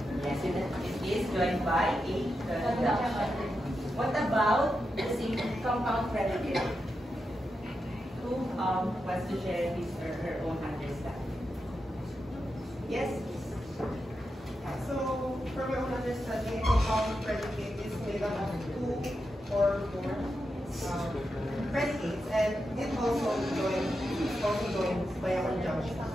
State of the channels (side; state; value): both; normal; correlation 0.87